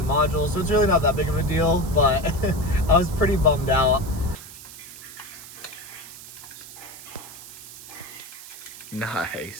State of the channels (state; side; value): noise; right; hiss, 15 dB below the sound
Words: modules. So it's really not that big of a deal, but I was pretty bummed out.